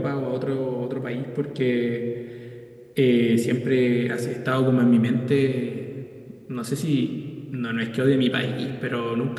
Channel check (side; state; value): both; identical; correlation 1.00